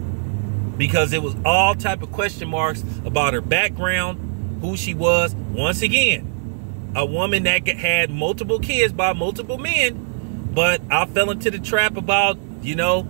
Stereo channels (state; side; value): silent; left; digital silence